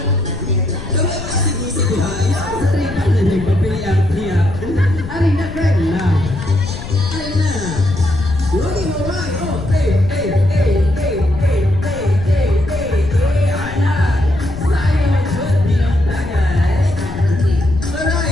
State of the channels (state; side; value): noise; left; rumble, 10 dB below the sound